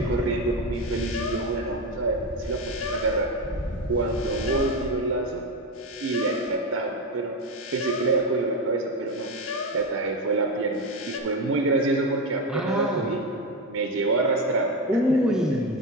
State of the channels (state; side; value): normal; both; correlation 0.15